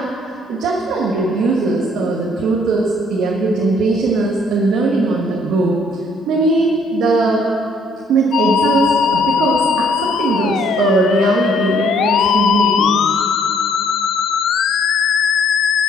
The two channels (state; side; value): normal; both; correlation 0.63